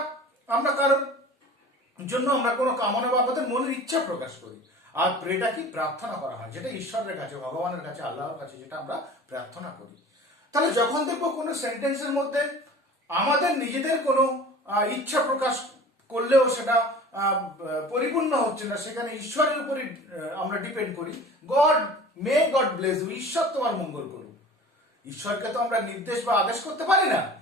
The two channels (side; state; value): both; normal; correlation 0.41